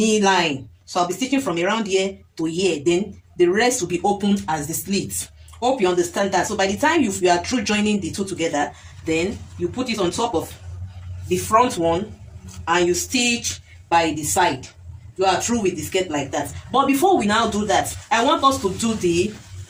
line. So I'll be stitching from around here to here, then the rest will be opened as the slits. Hope you understand that. So by the time you are through joining the two together, then you put it on top of the front one and you stitch by the side. You are through with the skirt like that. But before we now do that, I want us to do the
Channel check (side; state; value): both; identical; correlation 1.00